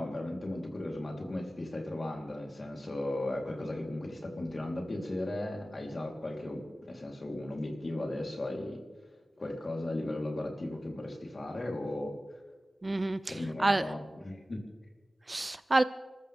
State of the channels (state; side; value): normal; both; correlation 0.96